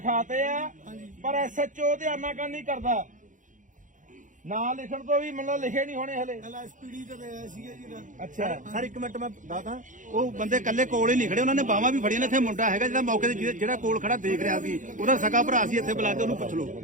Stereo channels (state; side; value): late; left; 0.37 ms